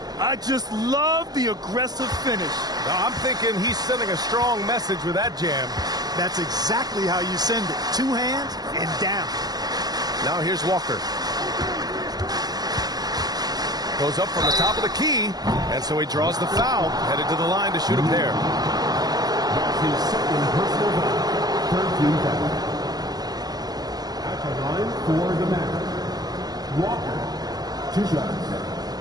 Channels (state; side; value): late; left; 0.19 ms